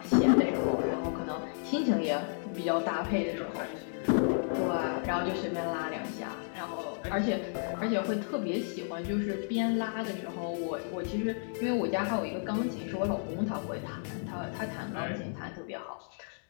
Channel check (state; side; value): silent; right; digital silence